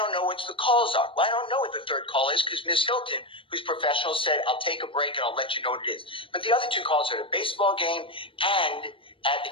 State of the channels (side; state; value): right; late; 0.25 ms